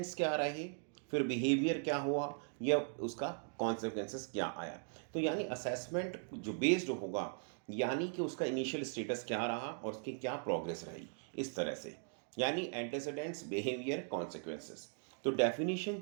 क्या रहे, फिर बिहेवियर क्या हुआ, या उसका कॉन्सिक्वेंसेस क्या आया। तो यानी असेसमेंट जो बेस्ड होगा, यानी कि उसका इनिशियल स्टेटस क्या रहा और उसकी क्या प्रोग्रेस रही, इस तरह से, यानी एंटीसीडेंट्स, बिहेवियर, कॉन्सिक्वेंसेस। तो डेफिनेशन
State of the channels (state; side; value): silent; left; 52 dB below the other